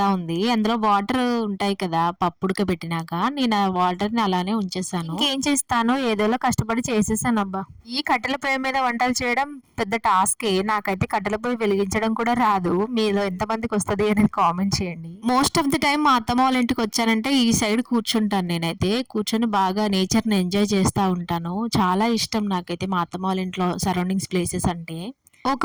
ఉంది. అందులో వాటర్ ఉంటాయి కదా పప్పు ఉడకబెట్టినాక, నేను ఆ వాటర్ ని అలానే ఉంచేసాను. ఏం చేస్తాను, ఏదోలా కష్టపడి చేసేసాను అబ్బా. ఈ కట్టెల పొయ్యి మీద వంటలు చేయడం పెద్ద టాస్కే. నాకైతే కట్టెల పొయ్యి వెలిగించడం కూడా రాదు. మీలో ఎంతమందికి వస్తుంది అనేది కామెంట్ చేయండి. మోస్ట్ ఆఫ్ ది టైం మా అత్తమ్మ వాళ్ళ ఇంటికి వచ్చానంటే ఈ సైడ్ కూర్చుంటాను. నేనైతే కూర్చొని బాగా నేచర్ ని ఎంజాయ్ చేస్తూ ఉంటాను. చాలా ఇష్టం నాకైతే మా అత్తమ్మ వాళ్ళ ఇంట్లో సరౌండింగ్స్ ప్లేసెస్ అంటే. ఒక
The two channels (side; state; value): both; identical; correlation 1.00